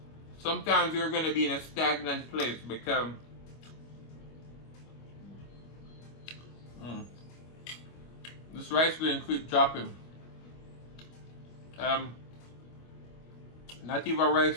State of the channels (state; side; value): late; right; 25 ms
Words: sometimes you're going to be in a stagnant place because this rice going to keep dropping. Not even